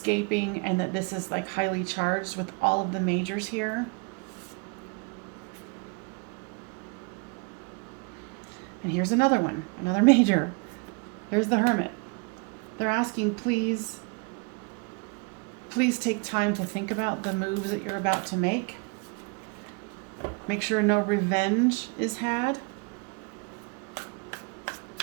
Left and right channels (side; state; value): left; quieter; 32.8 dB